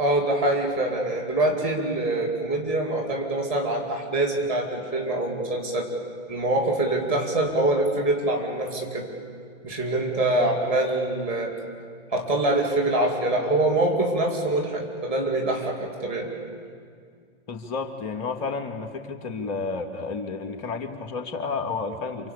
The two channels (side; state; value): right; late; 1.7 ms